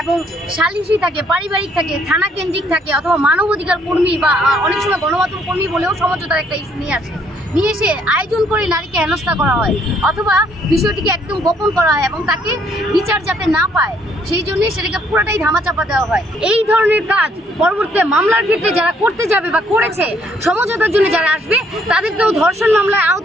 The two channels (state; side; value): normal; both; correlation 0.67